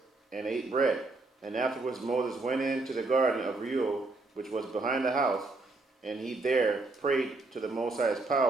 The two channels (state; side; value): quieter; left; 3.3 dB